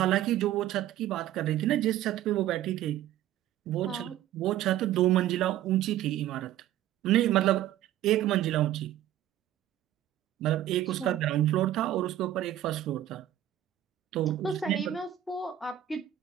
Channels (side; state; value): left; quieter; 12.5 dB